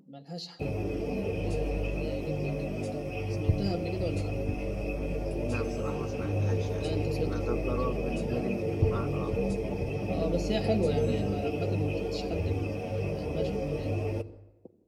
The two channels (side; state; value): both; identical; correlation 1.00